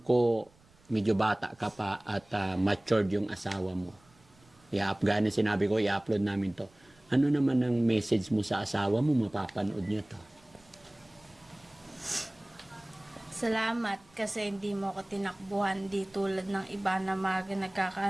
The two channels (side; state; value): right; noise; rumble, 30 dB below the sound